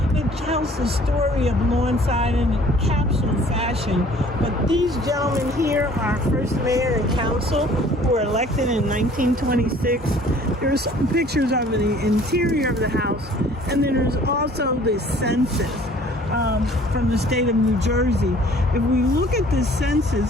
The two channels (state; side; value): normal; both; correlation 0.53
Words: It tells the story of Lawnside in a capsule fashion, but these gentlemen here are first mayor and council who were elected in 1926. There's some pictures of the interior of the house, and then there's also the census from the state of New Jersey. If we look at the